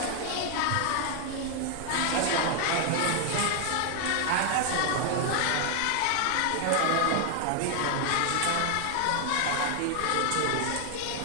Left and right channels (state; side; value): different; both; correlation 0.00